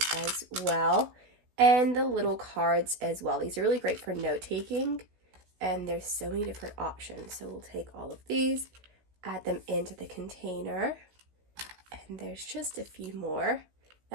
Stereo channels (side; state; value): left; late; 16 ms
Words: as well, and the little cards as well. These are really great for note-taking. And there's so many different options. So we'll take all of these, add them into the container, and there's just a few more.